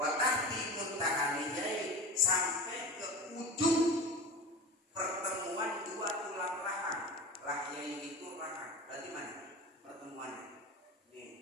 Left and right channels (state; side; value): normal; both; correlation 0.31